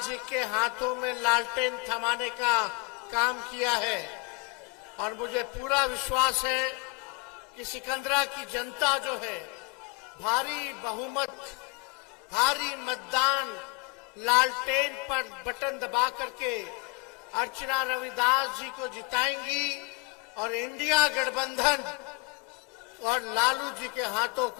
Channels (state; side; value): quieter; right; 30.0 dB